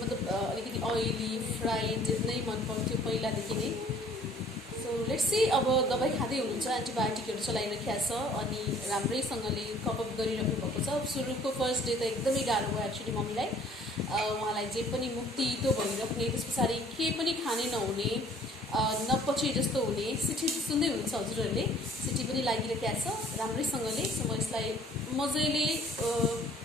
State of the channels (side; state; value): both; normal; correlation 0.56